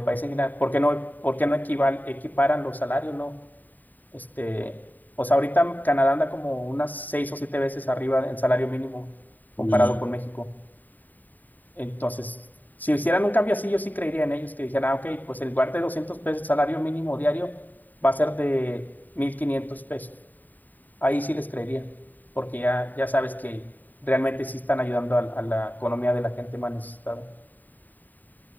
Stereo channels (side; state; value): right; late; 0.086 ms